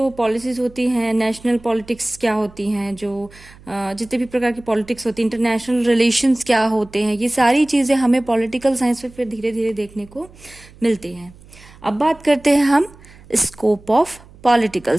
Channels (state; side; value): noise; right; hum, 23 dB below the sound